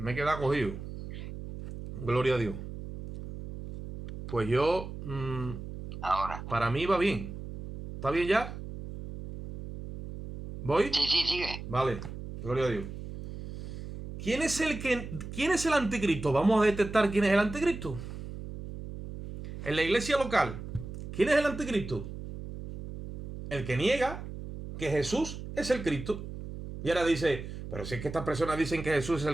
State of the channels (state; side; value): noise; right; hum, 10 dB below the sound